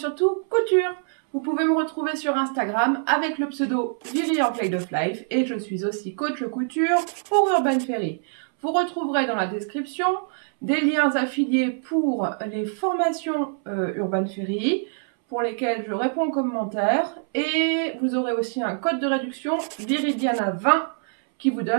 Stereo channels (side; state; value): left; silent; 62 dB below the other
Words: couture. Vous pouvez me retrouver sur Instagram avec le pseudo Viri en Play of Life et je suis aussi coach couture pour Urban Ferry. Vous retrouverez dans la description des liens affiliés pour les formations Urban Ferry pour lesquelles je réponds aux commentaires et vous aurez aussi un code de réduction Viridiana20 qui vous